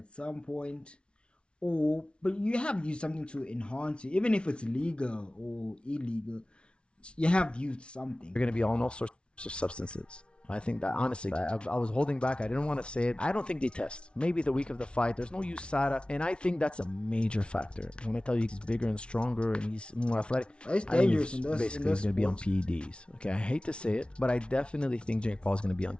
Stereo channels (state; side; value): late; right; 0.058 ms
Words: some point, but you have used something to enhance it, even if it's legal or illegal, you have used something. You're going to be on all sorts of substances. I think that honestly, I was holding back. I didn't want to say it. I don't think they test. Maybe the week of the fight, there's no USADA. And I think that's a major factor. When I tell you he's bigger and stronger and he's more athletic, it's dangerous basically he's going to be on PEDs. Okay, I hate to say it, but I definitely think Jake Paul is going to be on